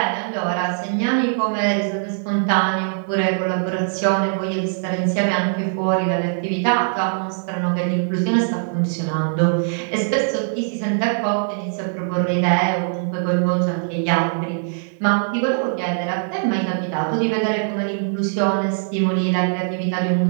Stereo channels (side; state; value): left; silent; digital silence